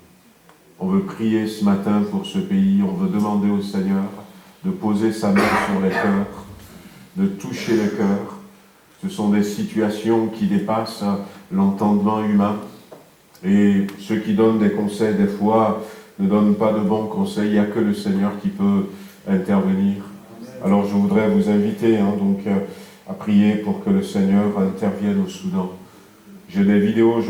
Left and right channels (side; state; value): both; identical; correlation 1.00